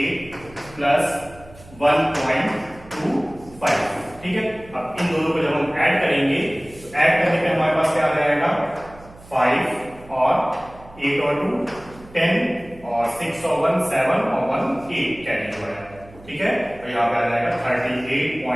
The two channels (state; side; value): noise; right; hum, 22 dB below the sound